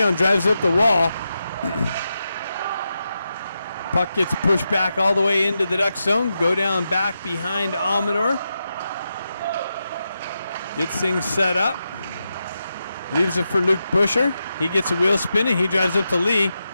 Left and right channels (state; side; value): inverted; both; correlation -0.88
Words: drives up the wall. Puck gets pushed back all the way into the Ducks zone. Go down back behind Amador. Gets things set up. Leaves it for Luke Busher. He gets a wheel spinning. He drives up to Lee.